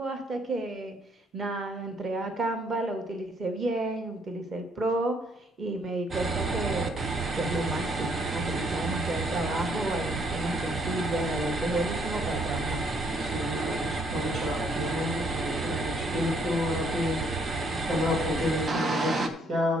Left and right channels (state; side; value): normal; both; correlation 0.67